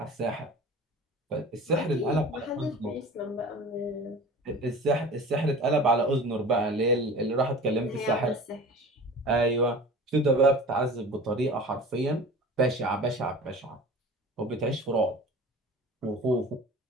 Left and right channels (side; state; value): both; normal; correlation 0.39